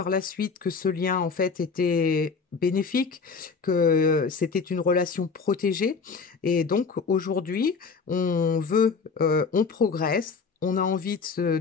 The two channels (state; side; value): quieter; right; 5.1 dB